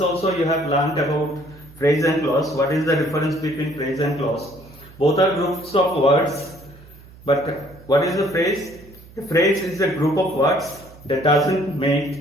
also you have learned about phrase and clause. What is the difference between phrase and clause? Both are groups of words, but what is a phrase? A phrase is a group of words that doesn't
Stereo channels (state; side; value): noise; right; hum, 22 dB below the sound